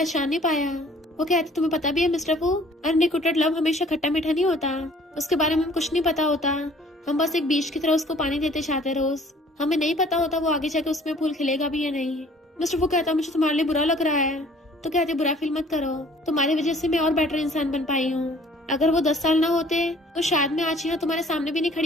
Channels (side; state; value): both; normal; correlation 0.54